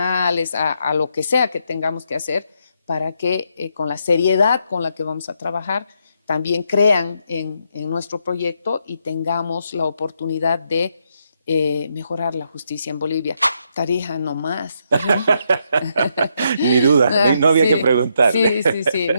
a lo que sea que tengamos que hacer para que con la seriedad con la que vamos a trabajar también crean en nuestro proyecto y tengamos la oportunidad de mejorar la justicia en Bolivia. Tarija no más. Ni duda, no había que preguntarle. Sí.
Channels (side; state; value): both; inverted; correlation -0.78